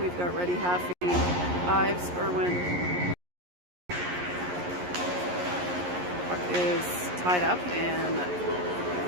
got Ready, Haffey, Ives, Irwin. Puck is tied up and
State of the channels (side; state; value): left; late; 11 ms